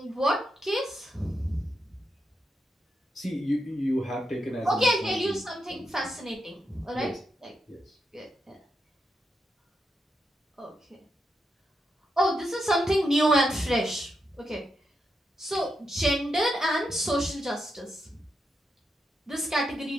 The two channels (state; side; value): normal; both; correlation 0.84